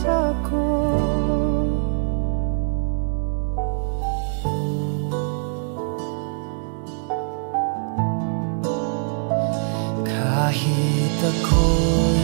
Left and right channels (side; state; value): left; silent; digital silence